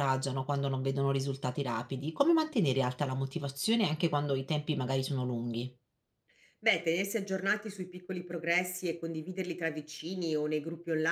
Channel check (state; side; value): identical; both; correlation 1.00